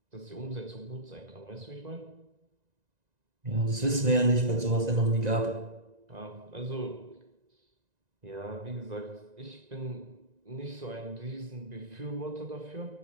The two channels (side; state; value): left; late; 1.9 ms